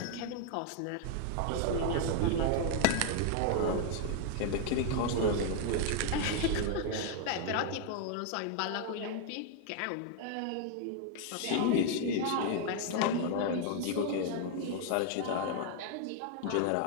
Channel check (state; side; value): different; both; correlation 0.00